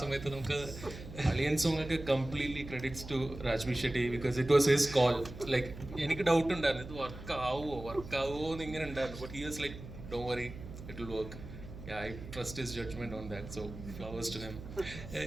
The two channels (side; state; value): right; noise; hum, 12 dB below the sound